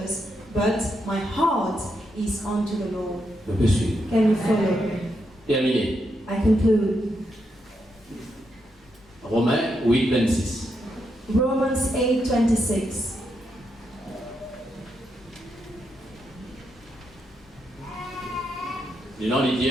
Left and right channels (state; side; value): normal; both; correlation 0.82